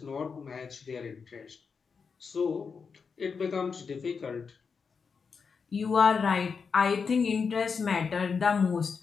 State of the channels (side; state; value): right; quieter; 5.6 dB